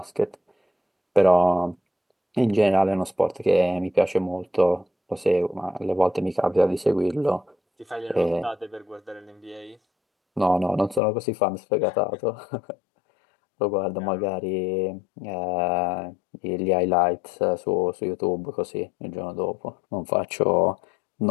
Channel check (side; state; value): right; drops out; at 11.0 s